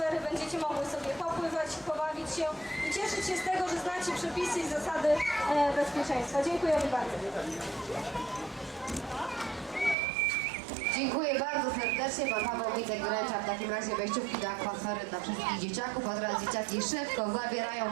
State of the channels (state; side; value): drops out; left; at 10.0 s